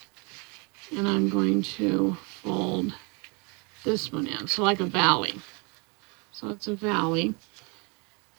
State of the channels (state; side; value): quieter; left; 32.3 dB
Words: and I'm going to fold this one in, so like a valley. So it's a valley,